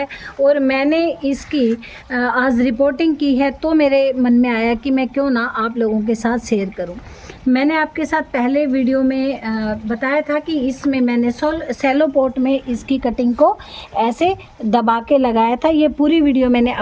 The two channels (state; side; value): identical; both; correlation 1.00